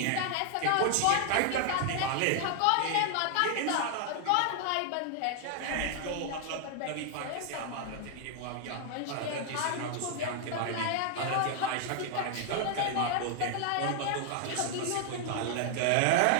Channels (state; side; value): different; both; correlation 0.00